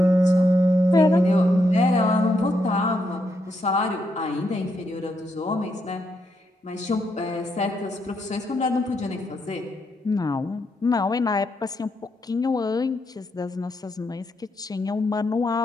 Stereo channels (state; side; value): normal; both; correlation 0.80